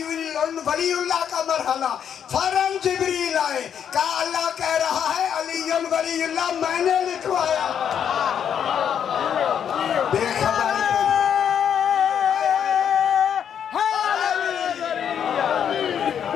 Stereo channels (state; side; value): quieter; right; 8.5 dB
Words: ولی اللہ کا مرحلہ, فوراً جبریل آئے, کہا اللہ کہہ رہا ہے علی ولی اللہ میں نے لکھوایا. بے خبر